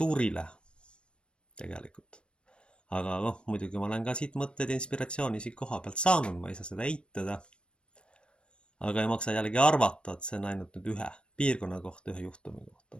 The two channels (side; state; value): right; late; 0.056 ms